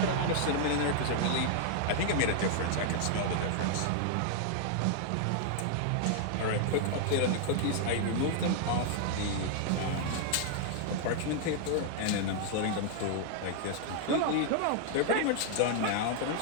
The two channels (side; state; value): both; different; correlation -0.01